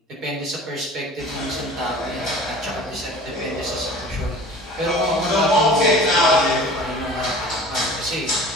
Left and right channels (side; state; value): both; normal; correlation 0.42